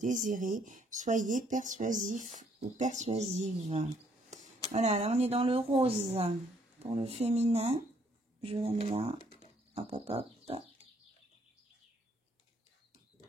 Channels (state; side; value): normal; both; correlation 0.67